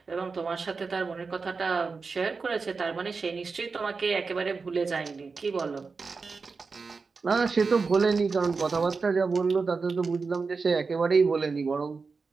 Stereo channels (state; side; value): quieter; left; 4.6 dB